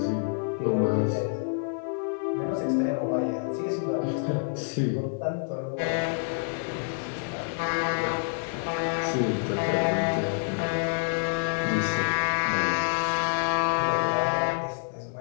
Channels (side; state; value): right; silent; digital silence